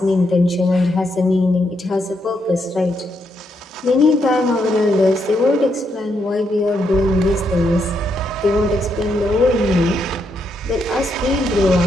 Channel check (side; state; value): both; normal; correlation 0.78